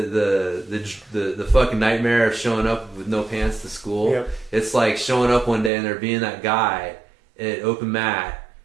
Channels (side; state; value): left; drops out; at 5.7 s